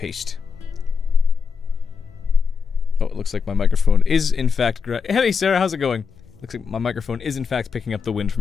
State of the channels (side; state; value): right; quieter; 6.0 dB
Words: Oh, it looks like my microphone is in fact Hey Sarah, how's it going? Looks like my microphone is in fact picking up the wind